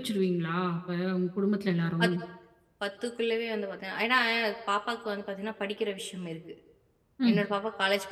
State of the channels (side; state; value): both; identical; correlation 1.00